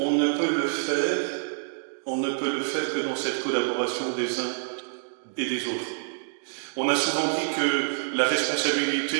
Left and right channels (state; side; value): silent; left; digital silence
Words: ne peut le faire que dans cette collaboration des uns et des autres. On a souvent dit que la